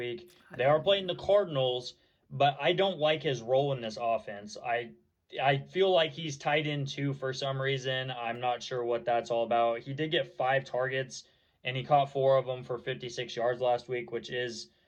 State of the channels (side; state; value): both; identical; correlation 1.00